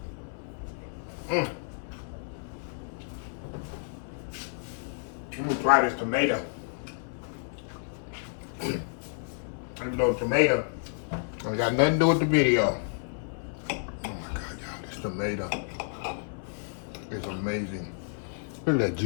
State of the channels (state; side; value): silent; right; 58 dB below the other